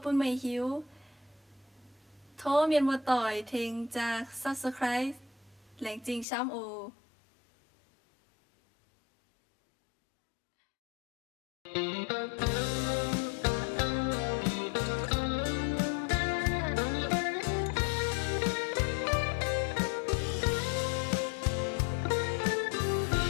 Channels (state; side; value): drops out; right; at 6.2 s